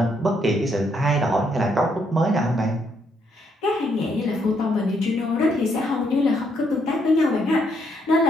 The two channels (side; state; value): both; normal; correlation 0.73